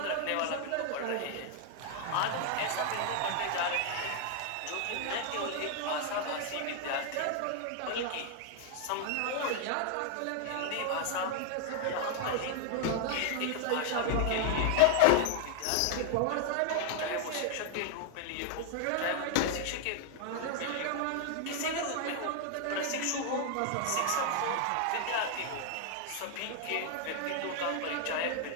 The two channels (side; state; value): both; different; correlation 0.00